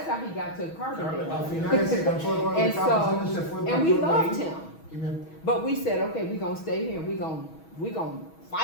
how he got to Carbondale. And we loved him. But we said, okay, we're gonna stay here. We're gonna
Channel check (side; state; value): right; late; 6.2 ms